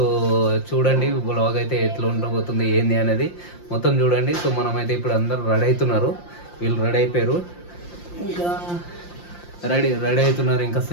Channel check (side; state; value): right; late; 5.7 ms